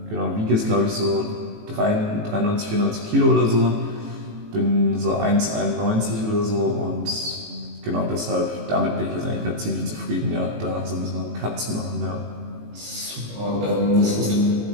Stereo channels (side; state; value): left; late; 18 ms